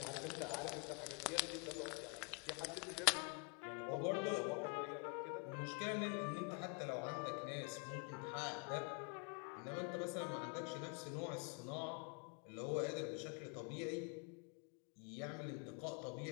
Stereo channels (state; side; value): quieter; right; 35.0 dB